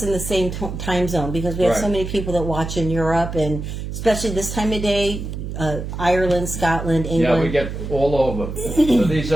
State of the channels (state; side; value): noise; right; hum, 6 dB below the sound